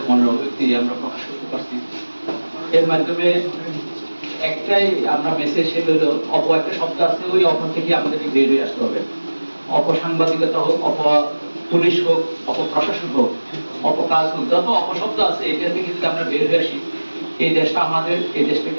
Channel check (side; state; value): both; inverted; correlation -1.00